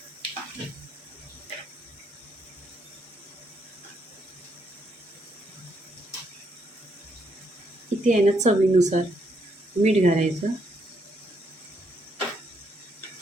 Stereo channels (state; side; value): normal; both; correlation 0.74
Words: इथे आहे ना चवीनुसार मीठ घालायचं.